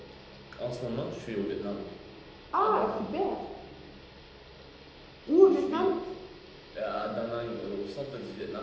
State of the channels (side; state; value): both; identical; correlation 1.00